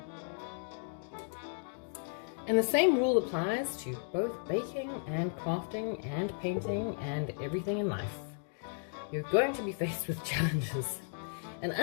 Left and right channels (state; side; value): silent; right; digital silence